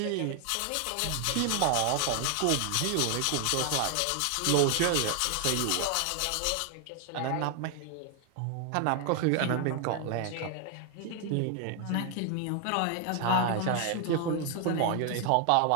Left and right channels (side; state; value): both; different; correlation 0.00